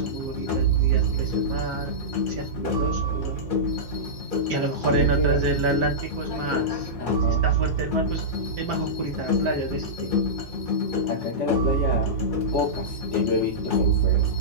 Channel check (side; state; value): both; normal; correlation -0.14